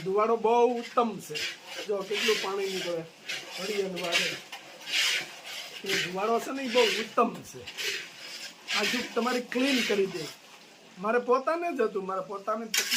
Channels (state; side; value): identical; both; correlation 1.00